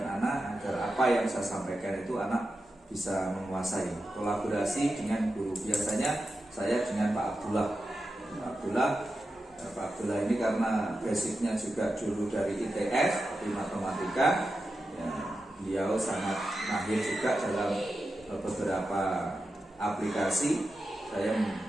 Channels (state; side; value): normal; both; correlation 0.90